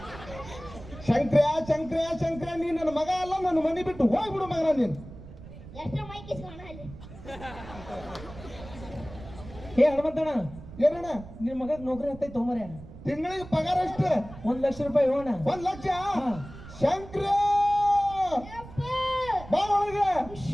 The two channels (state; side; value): noise; right; rumble, 15 dB below the sound